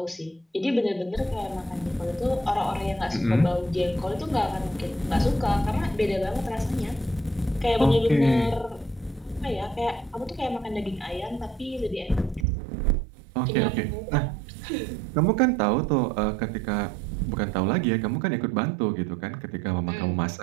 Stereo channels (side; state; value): left; drops out; at 12.5 s